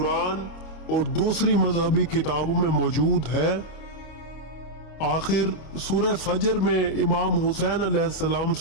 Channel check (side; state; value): right; late; 25 ms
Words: और दूसरी मजहबी किताबों में मौजूद है? आखिर सूरह फजर में इमाम हुसैन अलैहिस्सलाम